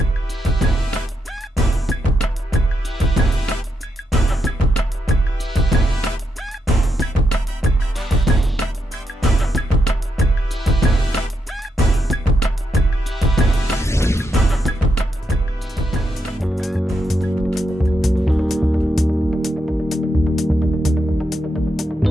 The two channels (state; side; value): normal; both; correlation 0.82